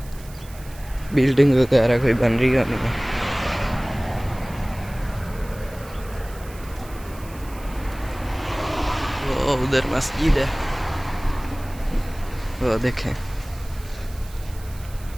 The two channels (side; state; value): right; noise; hiss, 20 dB below the sound